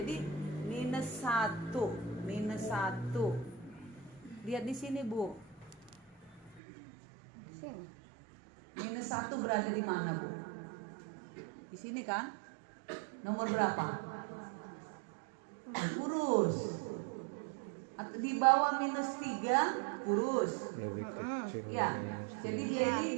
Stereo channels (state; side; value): drops out; left; at 6.6 s